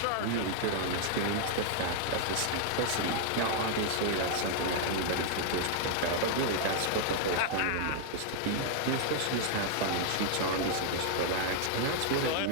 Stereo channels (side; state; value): both; different; correlation 0.00